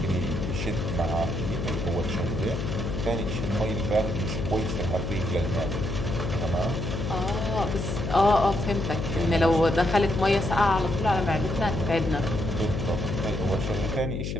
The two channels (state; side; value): noise; left; hum, 3 dB below the sound